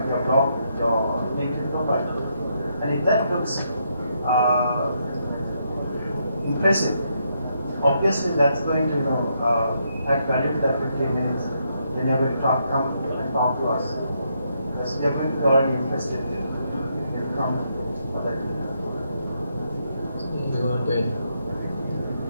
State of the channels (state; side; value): inverted; both; correlation -0.77